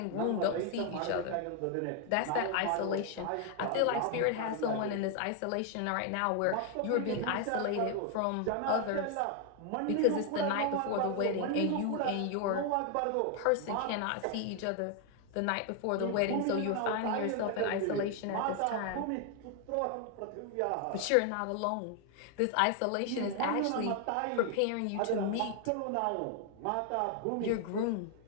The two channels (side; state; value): both; different; correlation 0.00